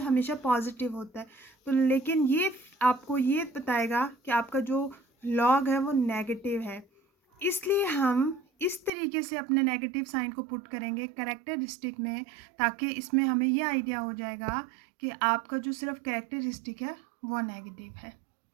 हमेशा पॉजिटिव होता है, तो लेकिन ये आपको ये बताएगा कि आपका जो लॉग है वो नेगेटिव है। इसलिए हम इस तरीके से अपने नेगेटिव साइन को पुट करेंगे करेक्टरिस्टिक में, ताकि इसमें हमें ये आइडिया हो जाएगा कि आपका जो सिर्फ करेक्टरिस्टिक है वो नेगेटिव है।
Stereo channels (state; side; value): drops out; left; at 8.9 s